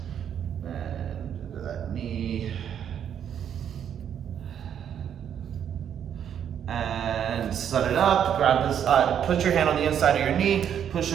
And into that knee. And set it up, grab this, put your hand on the inside of your knee, push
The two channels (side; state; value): left; quieter; 9.0 dB